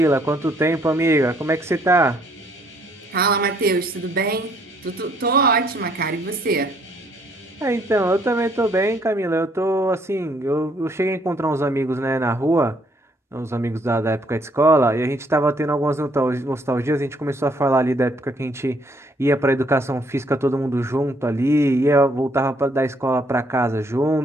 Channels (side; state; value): both; normal; correlation 0.67